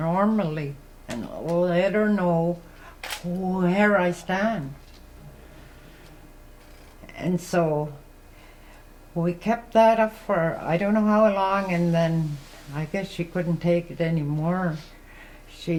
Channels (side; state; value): both; identical; correlation 1.00